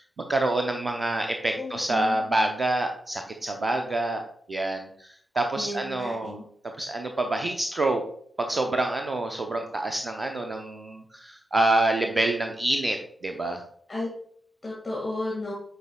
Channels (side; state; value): both; normal; correlation 0.88